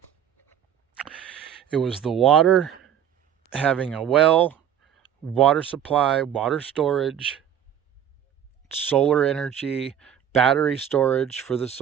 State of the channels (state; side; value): quieter; left; 9.3 dB